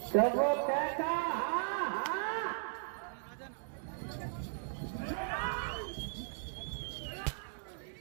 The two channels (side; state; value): left; silent; digital silence